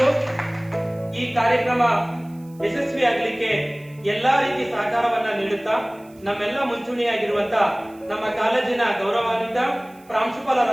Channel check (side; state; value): right; noise; hiss, 29 dB below the sound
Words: ಈ ಕಾರ್ಯಕ್ರಮ ಯಶಸ್ವಿಯಾಗಲಿಕ್ಕೆ ಎಲ್ಲಾ ರೀತಿ ಸಹಕಾರವನ್ನ ನೀಡುತ್ತಾ ನಮ್ಮೆಲ್ಲ ಮುಂಚೂಣಿಯಾಗಿರುವಂತ ನಮ್ಮ ಕಾಲೇಜಿನ ಗೌರವಾನ್ವಿತ